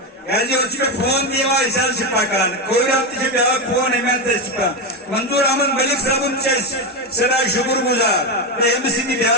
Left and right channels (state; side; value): normal; both; correlation 0.12